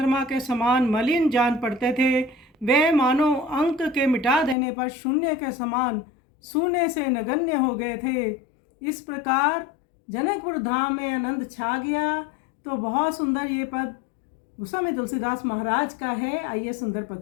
के समान मलिन जान पड़ते थे। वे मानो अंक के मिटा देने पर शून्य के समान सूने से नगण्य हो गए थे। इस प्रकार जनकपुर धाम में आनंद छा गया। तो बहुत सुंदर ये पद गोस्वामी तुलसीदास महाराज का है। आइए सुंदर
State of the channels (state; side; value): drops out; right; at 4.5 s